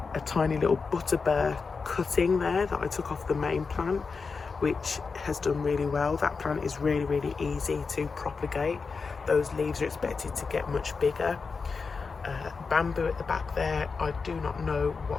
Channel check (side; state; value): right; quieter; 4.8 dB